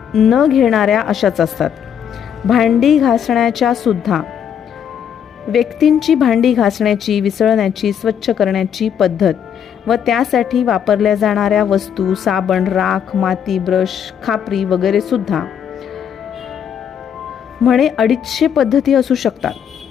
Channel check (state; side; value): quieter; right; 8.5 dB